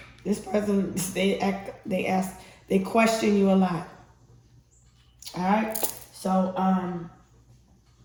This person, they question you a lot. All right? So,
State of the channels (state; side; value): identical; both; correlation 1.00